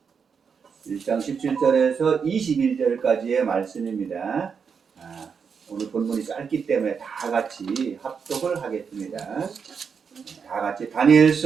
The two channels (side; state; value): left; quieter; 6.2 dB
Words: 21절까지의 말씀입니다. 오늘 본문이 짧기 때문에 다 같이 합독을 하겠습니다. 다 같이